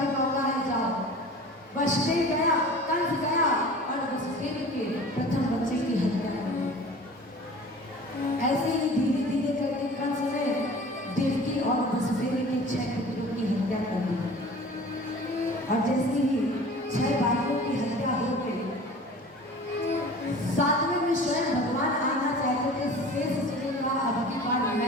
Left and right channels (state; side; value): normal; both; correlation 0.42